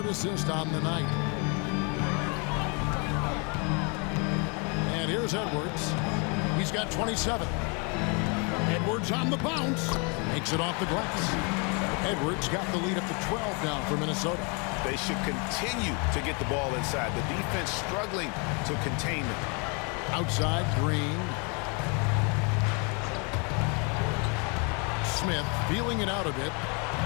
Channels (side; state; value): right; quieter; 33.7 dB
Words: assist on the night. And here's Edwards. He's got 27. Edwards on the bounce. Makes it off the glass. Edwards got the lead up to 12 now for Minnesota. They should continue to get the ball inside. The defense struggling to contain them. Outside, Green. Smith feeling it out a bit.